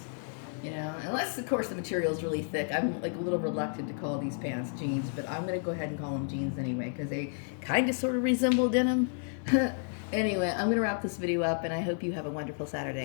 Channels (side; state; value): right; silent; 57 dB below the other